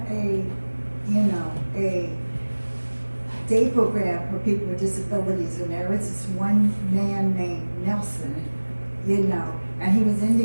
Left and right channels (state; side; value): inverted; both; correlation -1.00